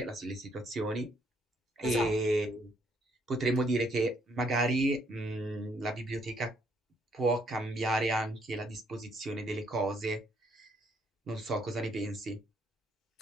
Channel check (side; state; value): both; normal; correlation 0.70